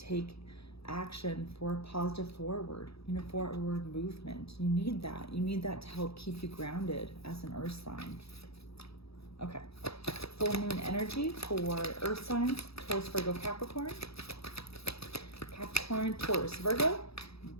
action for a positive forward movement. You need that. You need that to help keep you grounded as an earth sign. Okay. Full moon energy for earth signs: Taurus, Virgo, Capricorn. Capricorn, Taurus, Virgo.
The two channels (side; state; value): right; late; 0.77 ms